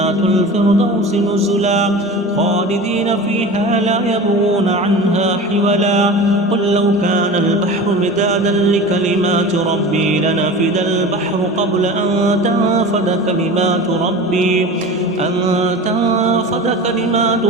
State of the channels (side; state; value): both; normal; correlation 0.34